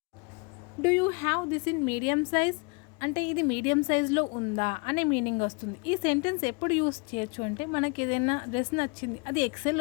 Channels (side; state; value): right; quieter; 31.9 dB